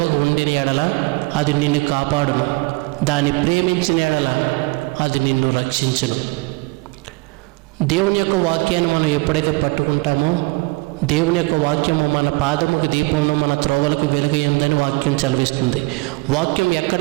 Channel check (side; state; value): left; quieter; 25.7 dB